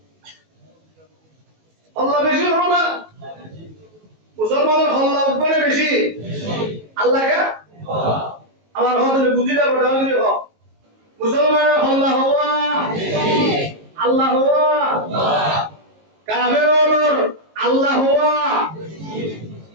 আল্লাহ বেশি না মুসলমানের আল্লাহ উপরে বেশি আল্লাহ কে আমার হতে বুঝিলা বড় হলি হ মুসলমানের আল্লাহ হুয়া আল্লাহ হুয়া কাফেরদের আল্লাহ হুয়া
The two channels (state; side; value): late; left; 19 ms